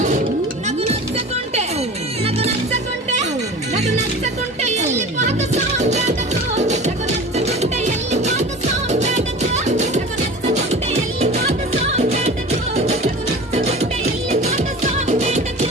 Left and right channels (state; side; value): normal; both; correlation 0.37